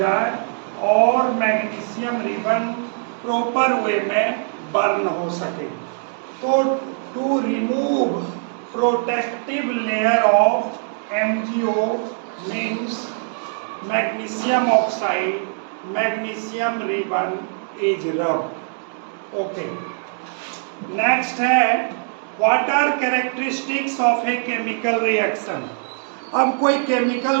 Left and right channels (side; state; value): left; silent; 61 dB below the other